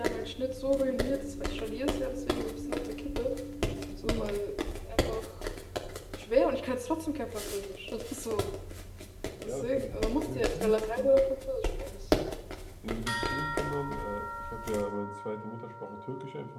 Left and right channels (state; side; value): identical; both; correlation 1.00